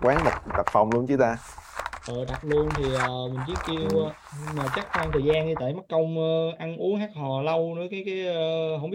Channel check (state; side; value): identical; both; correlation 1.00